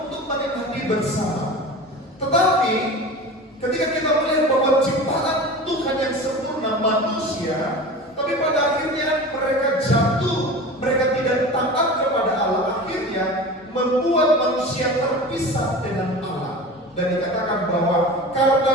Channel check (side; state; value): both; normal; correlation 0.34